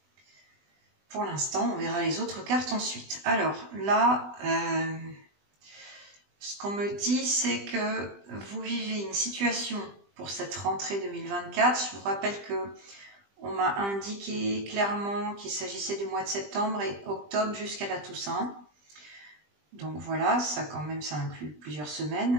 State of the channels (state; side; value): late; left; 20 ms